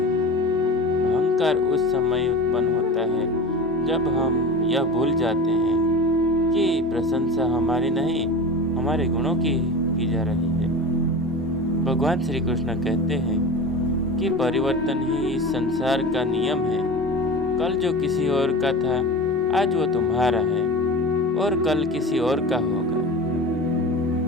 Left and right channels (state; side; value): normal; both; correlation 0.31